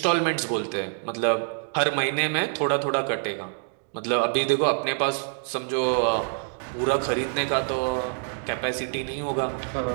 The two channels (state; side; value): silent; left; 61 dB below the other